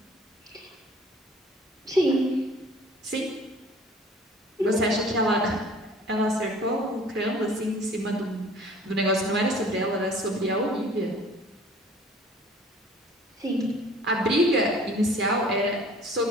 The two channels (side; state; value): both; normal; correlation 0.50